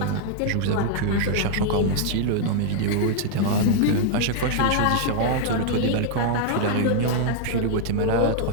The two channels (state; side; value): different; both; correlation -0.01